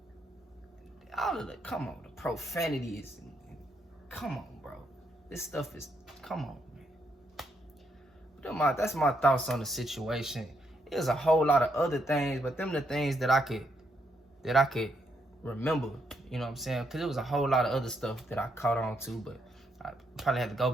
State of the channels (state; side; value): normal; both; correlation 0.77